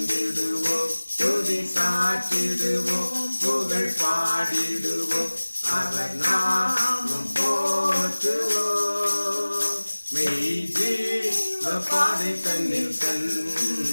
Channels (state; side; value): inverted; both; correlation -1.00